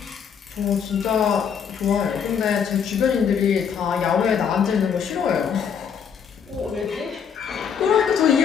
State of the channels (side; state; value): right; quieter; 7.3 dB